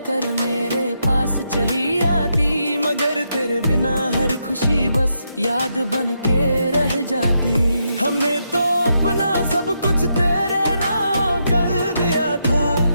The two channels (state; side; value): inverted; both; correlation -0.81